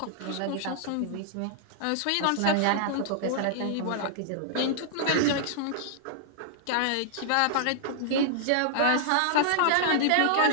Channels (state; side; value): different; both; correlation -0.01